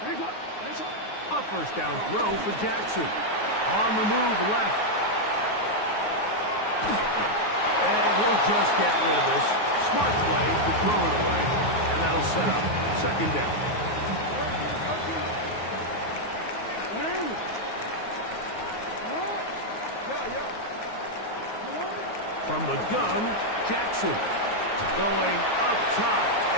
A 1st down throw for Jackson. On the move left. And he'll just get rid of this. Smart play to throw it away. And that'll set up 2nd down. From the gun, Jackson. Going up top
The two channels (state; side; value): late; right; 9.4 ms